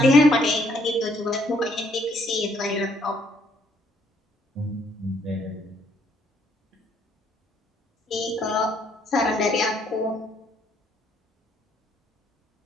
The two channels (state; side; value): normal; both; correlation 0.68